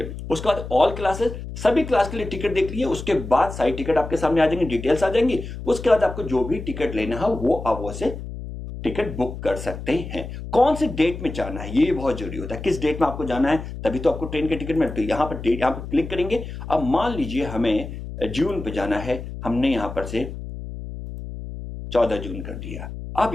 उसके बाद ऑल क्लासेस, सभी क्लास के लिए टिकट देख लिए। उसके बाद सारी टिकट आपके सामने आ जाएंगे, डिटेल्स आ जाएंगी। उसके बाद आपको जो भी टिकट लेना है वो आप वो से टिकट बुक कर सकते हैं। कौन सी डेट में जाना है ये बहुत जरूरी होता है, किस डेट में आपको जाना है, तभी तो आपको ट्रेन के टिकट मिलते हैं। यहां पर डेट, यहां पर क्लिक करेंगे। अब मान लीजिए हमें जून पे जाना है, हमने यहां पर से 14 जून कर दिया। अब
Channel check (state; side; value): noise; left; hum, 9 dB below the sound